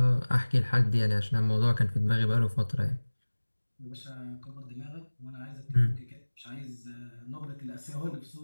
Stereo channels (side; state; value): both; inverted; correlation -1.00